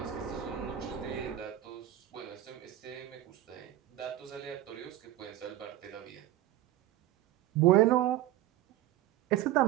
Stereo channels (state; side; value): quieter; left; 13.4 dB